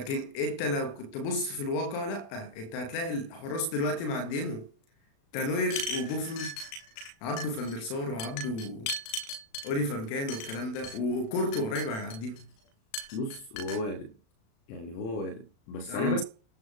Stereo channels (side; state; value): right; late; 36 ms